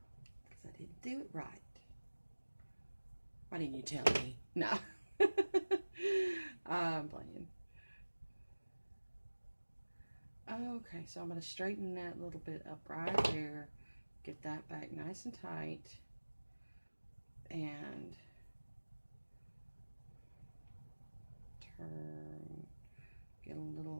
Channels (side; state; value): both; inverted; correlation -1.00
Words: Because I didn't do it right. Why didn't you tell me? No. I'm playing. Okay, so I'm going to straighten that little bit up right there. Get that back nice and tight. And turn, get a